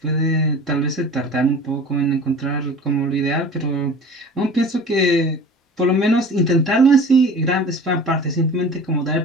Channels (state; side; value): normal; both; correlation 0.40